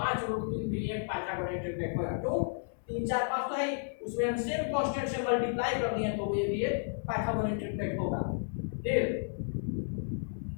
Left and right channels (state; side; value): silent; right; 56 dB below the other